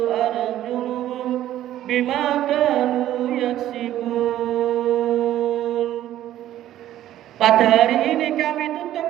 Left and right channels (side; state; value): left; quieter; 12.8 dB